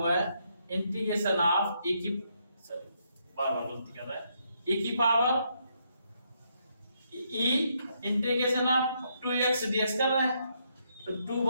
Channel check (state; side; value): inverted; both; correlation -0.76